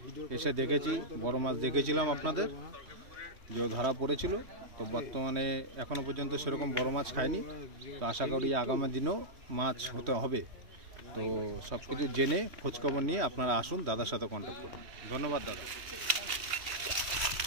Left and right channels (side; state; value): left; late; 3.1 ms